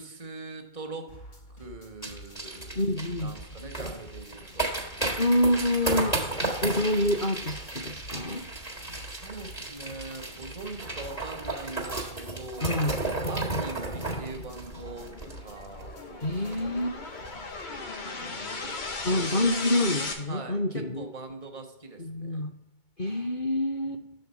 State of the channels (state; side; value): late; right; 2.2 ms